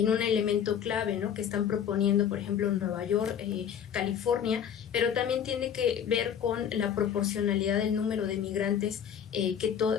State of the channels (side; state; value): right; quieter; 8.6 dB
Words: un elemento clave, ¿no? Que están proponiendo, por ejemplo, en Nueva York, California, pero también tiene que ver con la proporcionalidad del número de migrantes